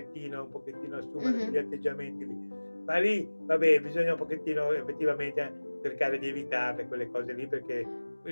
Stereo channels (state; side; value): inverted; both; correlation -1.00